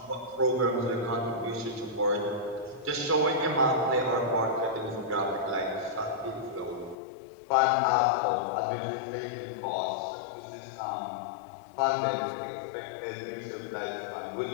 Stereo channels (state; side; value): drops out; right; at 7.0 s